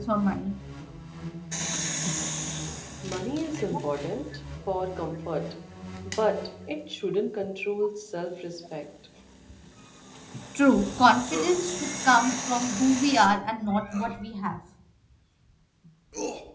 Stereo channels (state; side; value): identical; both; correlation 1.00